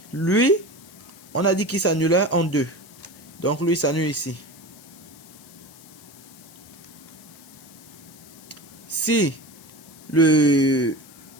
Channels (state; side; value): noise; left; hiss, 21 dB below the sound